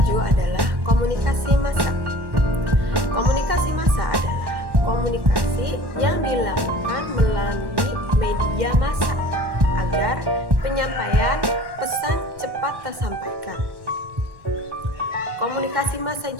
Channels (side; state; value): left; late; 1.1 ms